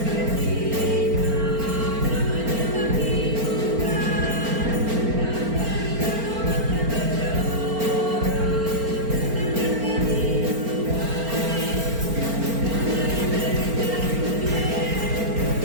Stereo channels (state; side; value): late; left; 4.4 ms